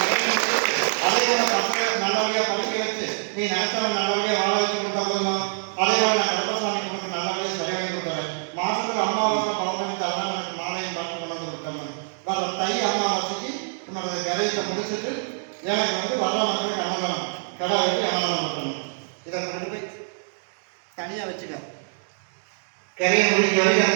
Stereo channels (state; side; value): silent; left; digital silence